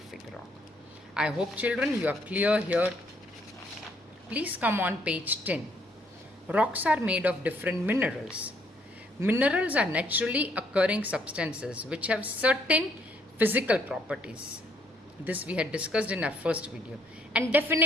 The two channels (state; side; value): normal; both; correlation 0.68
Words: rock. I hope children you are clear here. Please come on page 10. Rocks are made of different minerals. Minerals are naturally occurring substances which have certain physical properties. This we had discussed in our first video. And